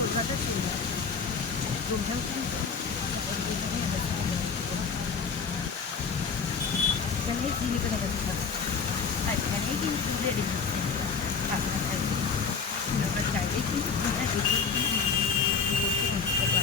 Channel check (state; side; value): quieter; right; 5.5 dB